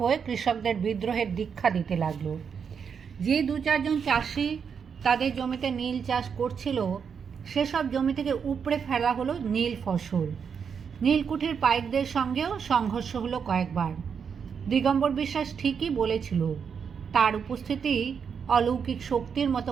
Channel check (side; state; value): left; quieter; 6.7 dB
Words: কৃষকদের বিদ্রোহের দীক্ষা দিতে লাগলো। যে 2-4 জন চাষি তাদের জমিতে নীল চাষ করছিল, সেসব জমি থেকে উপড়ে ফেলা হলো নীল ফসল। নীলকুঠির পাইকদের সঙ্গেও সংঘর্ষ হলো কয়েকবার। দিগম্বর বিশ্বাস ঠিকই বলেছিল, তার উপস্থিতি অলৌকিক শক্তির মতো